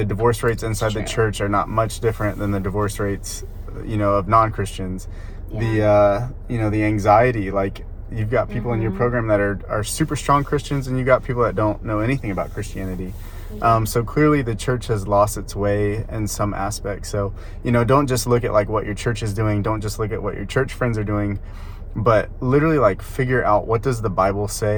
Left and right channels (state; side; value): identical; both; correlation 1.00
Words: divorce rates inside the church are not much different than the divorce rates, of non-Christians. The anxiety, like, you've got people in your program that are super strong Christians, and you got people that don't know anything about Christianity. So clearly the church has lost its way in some aspects. So, don't just look at, like, what your church is doing. Don't just look at what your church friends are doing, but literally, like, figure out, what does the Bible